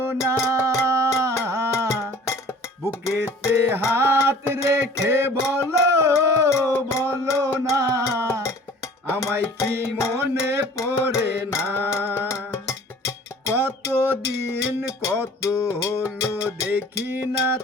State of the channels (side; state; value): both; normal; correlation 0.48